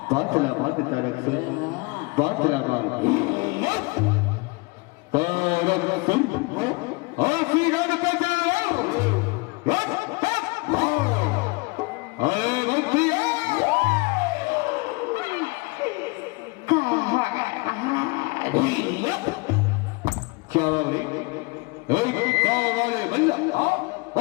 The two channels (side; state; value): right; quieter; 27.2 dB